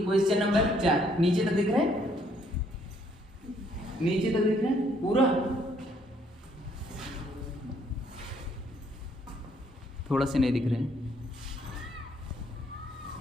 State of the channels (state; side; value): normal; both; correlation 0.67